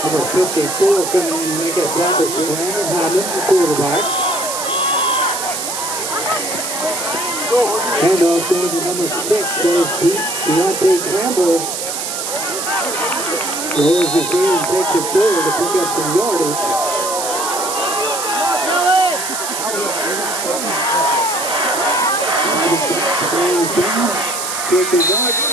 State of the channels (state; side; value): noise; right; hiss, 4 dB below the sound